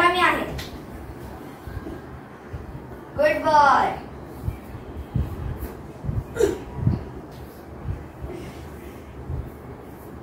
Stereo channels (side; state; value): both; identical; correlation 1.00